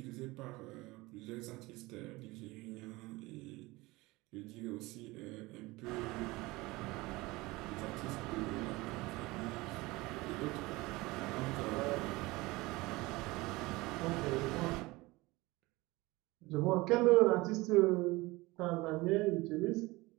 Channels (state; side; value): quieter; left; 21.6 dB